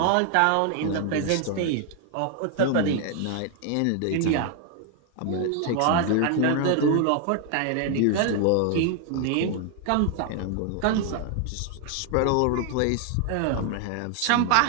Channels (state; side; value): different; both; correlation 0.00